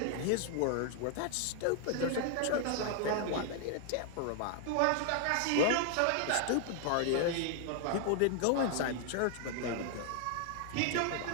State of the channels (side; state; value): both; different; correlation 0.00